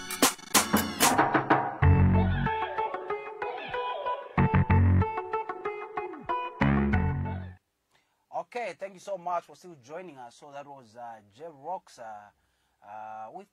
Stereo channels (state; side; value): identical; both; correlation 1.00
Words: Okay, thank you so much for still joining us. So that was J-Rocks with